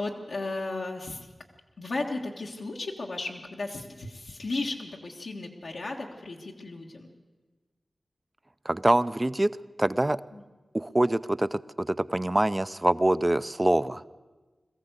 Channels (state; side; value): normal; both; correlation 0.98